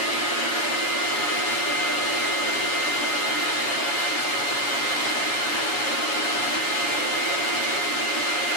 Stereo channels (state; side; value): late; right; 7.2 ms